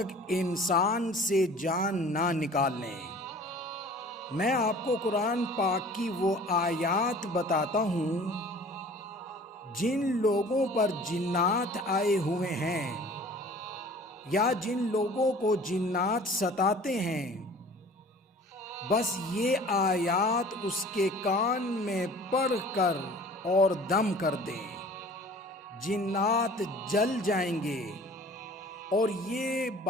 انسان سے جان نہ نکال لیں۔ میں آپ کو قرآن پاک کی وہ آیات بتاتا ہوں جن لوگوں پر جنات آئے ہوئے ہیں یا جن لوگوں کو جنات ستاتے ہیں، بس یہ آیات اس کے کان میں پڑھ کر اور دم کر دیں، جنات جل جائیں گے۔ اور یہ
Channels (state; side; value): normal; both; correlation 0.47